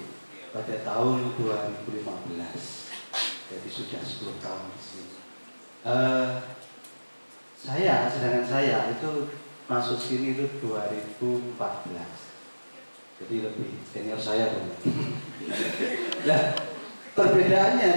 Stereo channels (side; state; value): both; inverted; correlation -1.00